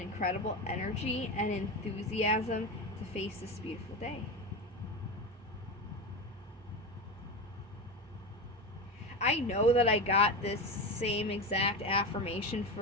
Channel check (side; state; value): both; normal; correlation 0.20